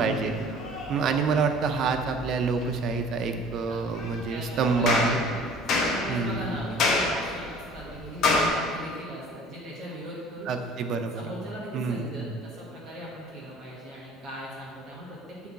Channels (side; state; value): both; normal; correlation 0.48